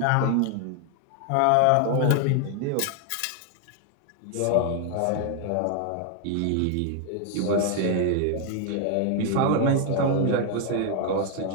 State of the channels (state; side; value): different; both; correlation 0.00